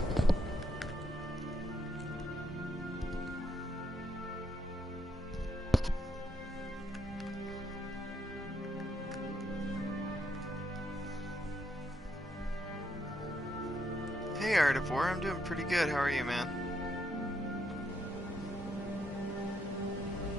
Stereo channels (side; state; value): both; normal; correlation 0.76